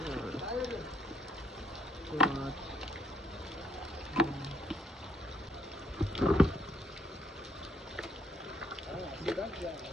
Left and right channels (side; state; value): both; normal; correlation 0.68